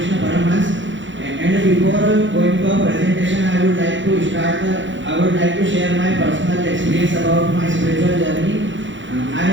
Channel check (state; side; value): late; left; 0.55 ms